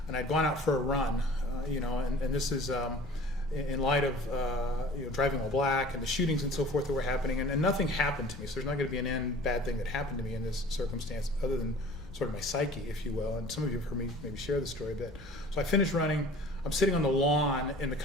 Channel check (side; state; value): both; normal; correlation 0.45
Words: and I'd gone out for a run, and this is in light of driving while black and the shootings and so forth that were happening, and nothing happened to me, so there's not going to be an end bad thing that happened to me in this circumstance other than sort of my psyche, if you will, and some of you have heard me maybe share the story a bit. So I finished running. I'm sitting on the lawn in the